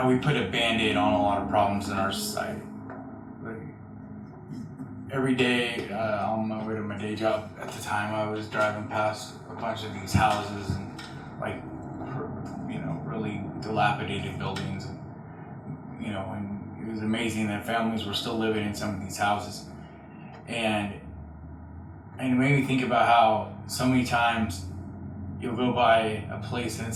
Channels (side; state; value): both; identical; correlation 1.00